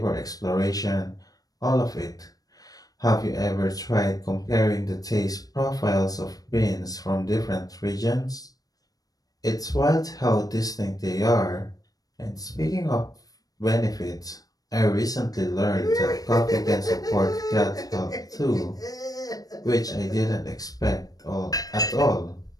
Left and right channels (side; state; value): right; late; 0.18 ms